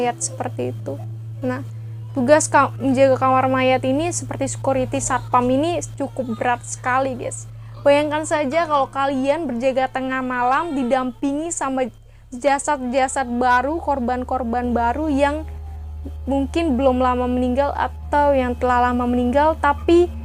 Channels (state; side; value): identical; both; correlation 1.00